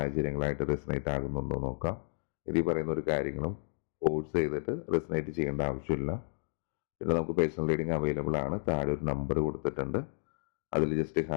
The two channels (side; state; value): right; silent; digital silence